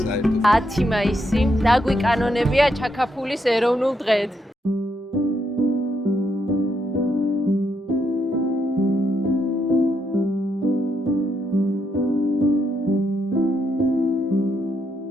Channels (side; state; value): both; normal; correlation 0.78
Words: საერთოდ. 10 მაისი დაგვიკანონებია ჩაკაფულის ეროვნულ დღედ.